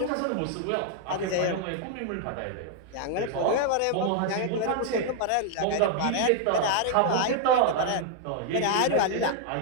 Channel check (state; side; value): different; both; correlation 0.00